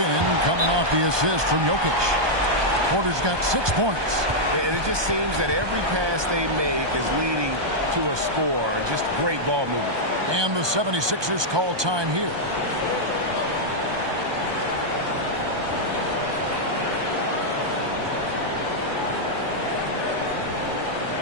coming off the assist from Jokic. Porter's got 6 points. And it just seems that every pass they make is leading to a score. Just great ball movement. And the 76ers call time here.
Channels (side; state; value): left; late; 1.2 ms